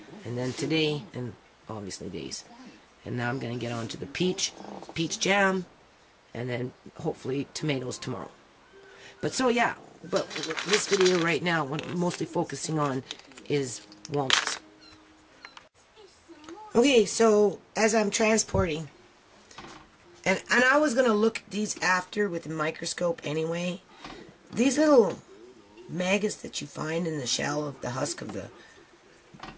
And then today, and obviously these. And now I'm going to get on to the peach jam, and then hopefully tomatoes tomorrow. But so yeah, but this video right now, what I'm mostly focusing on is walnuts. Okay, so as I'm transporting, and I was going to look at these after with a microscope anyway. These little maggots that you find in the shell of the husk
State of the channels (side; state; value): both; identical; correlation 1.00